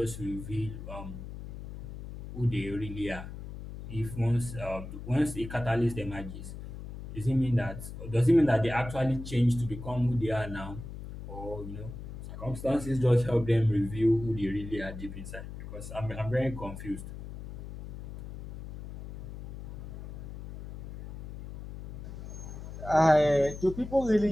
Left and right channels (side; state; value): left; noise; hum, 10 dB below the sound